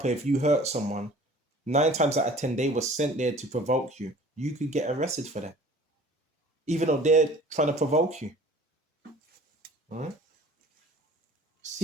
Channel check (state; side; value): normal; both; correlation 0.47